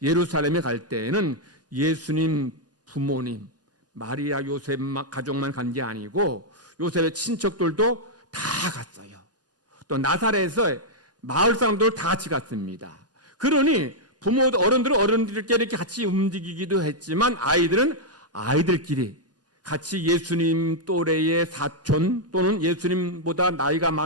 예루살렘에 갈 때에는 예수님 부모님 마리아 요셉 가족만 간 게 아니고 요셉의 친척들도 다 갔어요. 또 나사렛에서 마을 사람들 다 같이 갔습니다. 그러니 부모도 어른들끼리 이렇게 같이 움직이기도 했지만 아이들은 아이들끼리 같이 예수님 또래의 사촌 또는 예수님보다 나이가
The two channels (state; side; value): normal; both; correlation -0.04